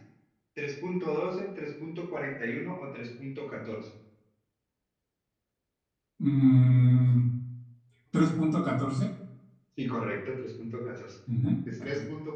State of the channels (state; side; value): identical; both; correlation 1.00